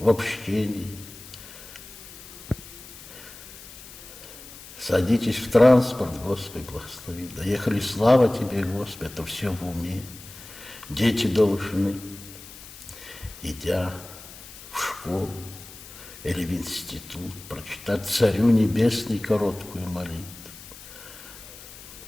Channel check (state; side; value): noise; left; hiss, 16 dB below the sound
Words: общении. Садитесь в транспорт, Господи, благослови. Доехали, слава Тебе, Господи, это все в уме. Дети должны, идя в школу или в институт, прочитать Царю Небесный короткую молитву.